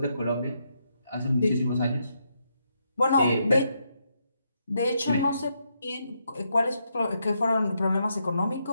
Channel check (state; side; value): inverted; both; correlation -0.79